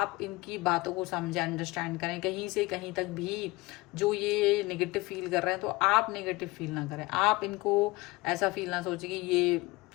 इनकी बातों को समझें, अंडरस्टैंड करें। कहीं से कहीं तक भी जो ये नेगेटिव फील कर रहे हैं तो आप नेगेटिव फील ना करें, आप इनको ऐसा फील ना सोचें कि ये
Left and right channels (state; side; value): quieter; right; 22.0 dB